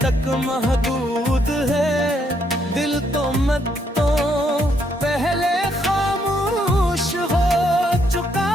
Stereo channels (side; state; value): both; normal; correlation 0.73